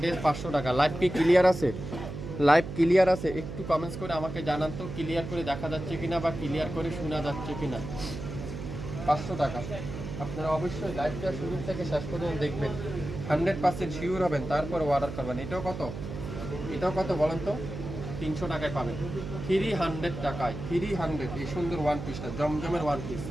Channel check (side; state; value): right; noise; hum, 8 dB below the sound